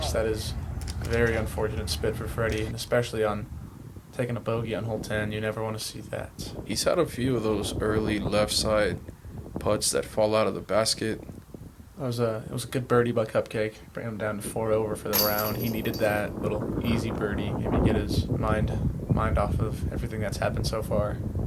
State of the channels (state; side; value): identical; both; correlation 1.00